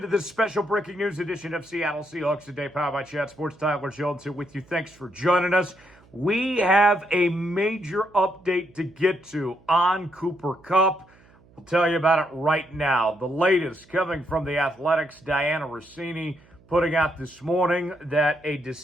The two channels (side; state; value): right; noise; hum, 28 dB below the sound